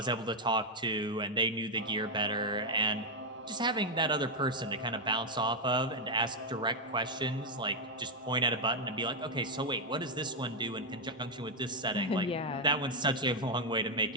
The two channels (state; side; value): normal; both; correlation 0.02